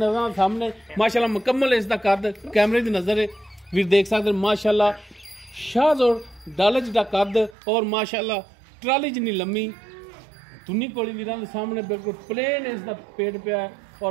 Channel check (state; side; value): drops out; left; at 7.6 s